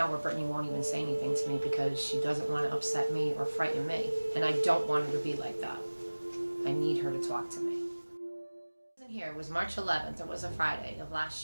where Brittany won't even say anything to me because she doesn't want to upset me or frighten me. And I don't want her to be like that. I need her to talk to me. Here, it was March 11th, it was a Friday of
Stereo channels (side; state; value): both; inverted; correlation -1.00